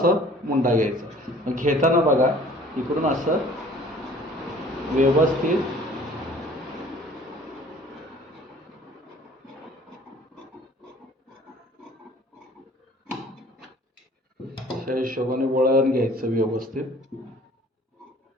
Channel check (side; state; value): both; normal; correlation 0.52